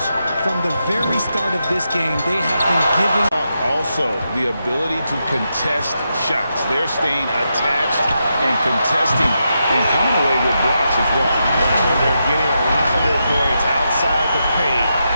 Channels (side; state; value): both; inverted; correlation -0.85